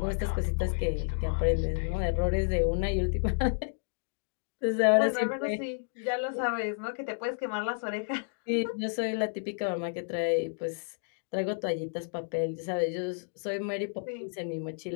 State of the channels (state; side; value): silent; right; digital silence